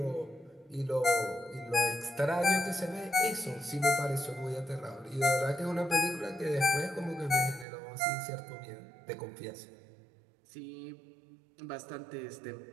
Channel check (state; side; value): drops out; left; at 7.7 s